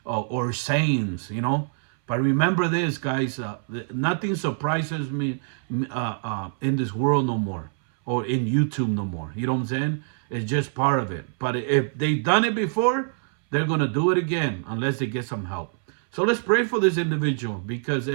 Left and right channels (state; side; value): silent; left; 62 dB below the other